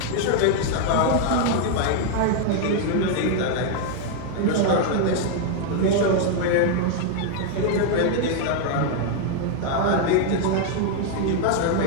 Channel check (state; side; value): different; both; correlation 0.00